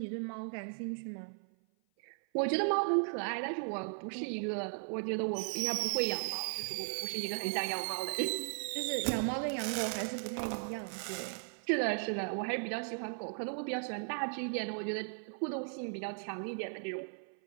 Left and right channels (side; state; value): left; silent; 53 dB below the other